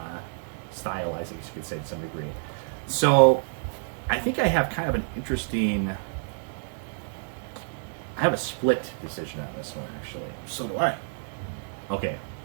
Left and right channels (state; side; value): silent; left; digital silence